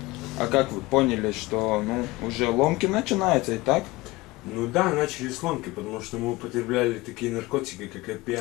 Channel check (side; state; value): right; quieter; 21.1 dB